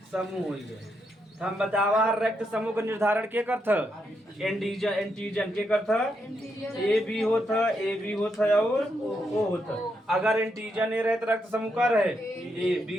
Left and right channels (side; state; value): both; normal; correlation 0.81